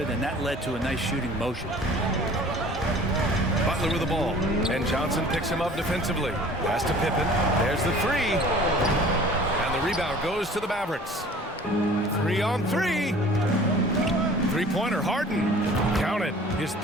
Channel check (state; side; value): normal; both; correlation 0.47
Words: and that led to a nice shooting motion. Butler with the ball, and Johnson picks him up defensively. Pass to Pippen. There's the 3. And the rebound goes to the Mavericks. 3 on 3. Three-pointer, Harden. Counted. His